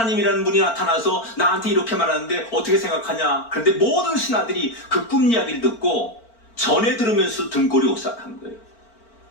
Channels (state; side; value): late; right; 4.4 ms